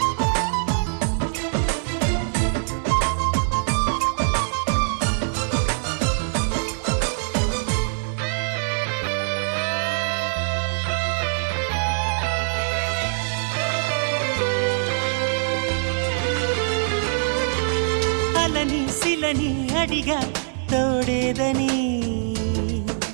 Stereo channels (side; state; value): left; silent; 57 dB below the other